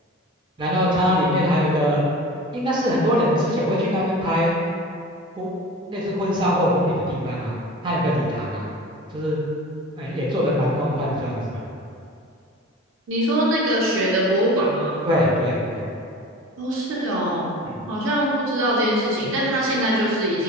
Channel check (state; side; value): normal; both; correlation 0.37